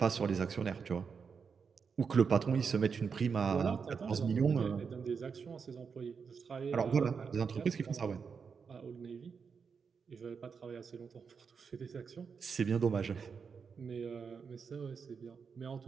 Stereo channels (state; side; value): quieter; left; 5.9 dB